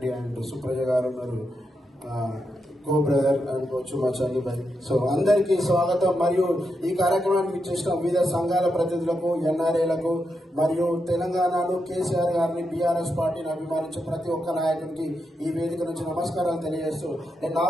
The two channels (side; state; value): both; normal; correlation 0.85